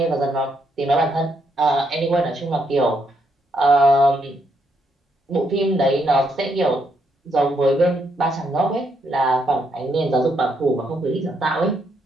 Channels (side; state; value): both; normal; correlation 0.76